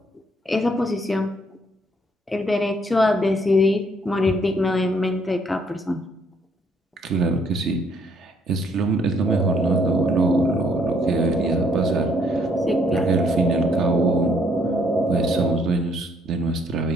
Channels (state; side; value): normal; both; correlation 0.67